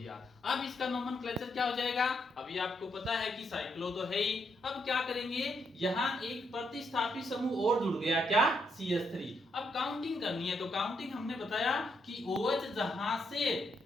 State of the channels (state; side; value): normal; both; correlation 0.78